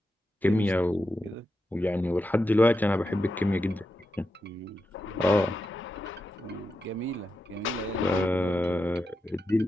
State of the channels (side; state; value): both; normal; correlation 0.88